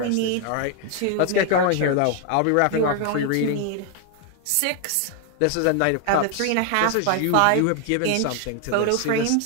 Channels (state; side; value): different; both; correlation 0.01